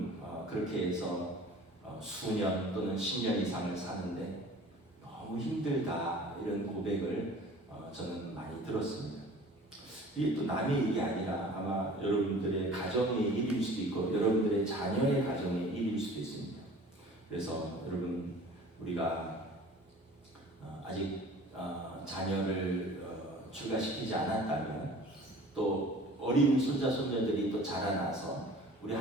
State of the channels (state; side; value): normal; both; correlation 0.46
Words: 그렇게 해서 수년 또는 10년 이상을 사는데 너무 힘들다, 이런 고백을 저는 많이 들었습니다. 이게 또 남의 일이 아니라 아마 여러분들의 가정의 일일 수도 있고 여러분들의 자녀의 가정의 일일 수도 있습니다. 그래서 여러분, 우리가 아직 자녀를 출가시키지 않았다면, 또 어린 손자 손녀들이 또 자라나서 우리